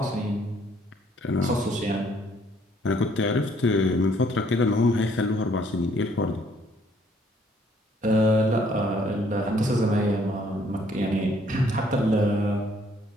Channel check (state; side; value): normal; both; correlation 0.64